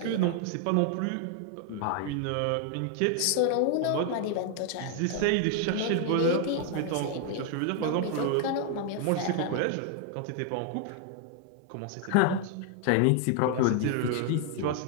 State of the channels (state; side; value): different; both; correlation 0.00